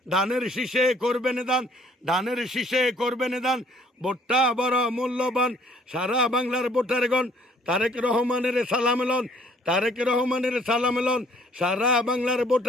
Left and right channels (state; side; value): normal; both; correlation 0.60